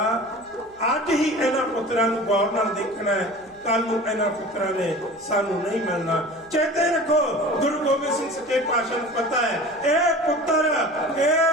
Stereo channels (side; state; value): right; noise; hum, 29 dB below the sound